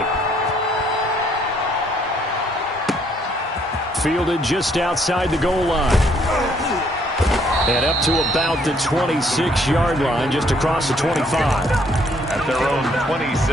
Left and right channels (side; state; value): both; normal; correlation 0.66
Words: Fielded just outside the goal line. And up to about the 26-yard line, just across the 25. At their own